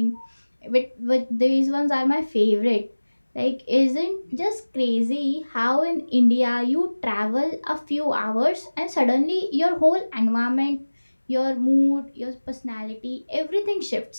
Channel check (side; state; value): both; inverted; correlation -1.00